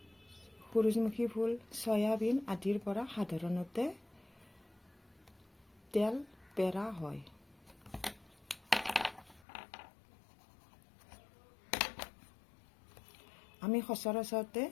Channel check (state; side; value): drops out; right; at 9.5 s